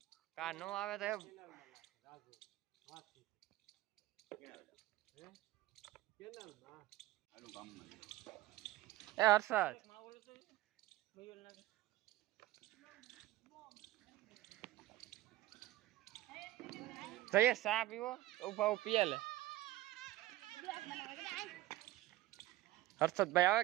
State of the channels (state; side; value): quieter; left; 16.3 dB